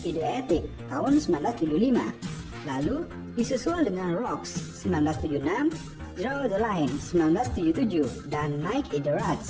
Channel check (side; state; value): both; identical; correlation 1.00